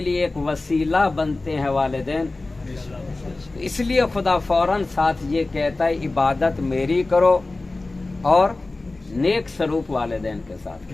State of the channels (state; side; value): quieter; right; 3.2 dB